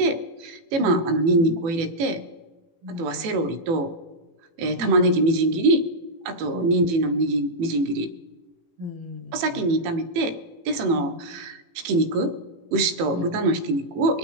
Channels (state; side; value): late; left; 18 ms